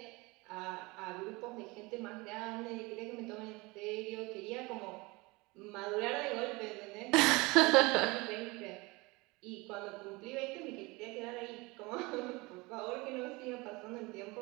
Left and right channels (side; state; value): left; quieter; 24.2 dB